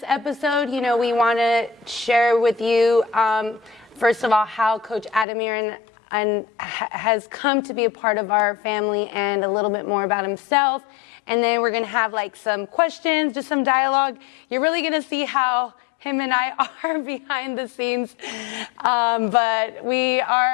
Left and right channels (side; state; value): right; drops out; at 5.2 s